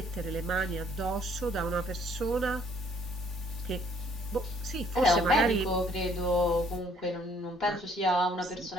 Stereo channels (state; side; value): normal; both; correlation 0.62